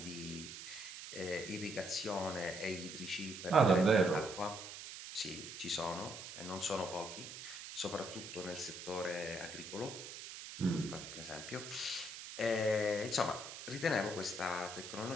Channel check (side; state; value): right; noise; hiss, 10 dB below the sound